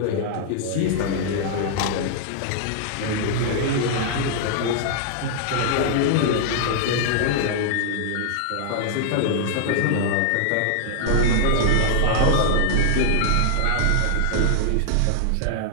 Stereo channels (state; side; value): different; both; correlation -0.01